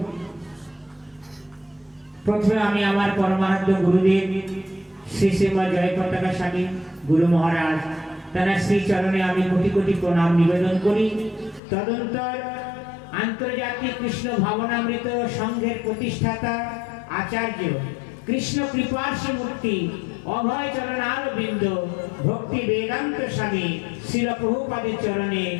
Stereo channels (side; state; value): right; drops out; at 11.6 s